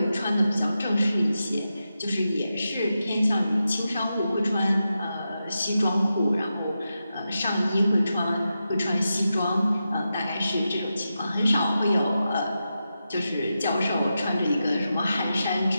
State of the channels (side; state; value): both; inverted; correlation -0.89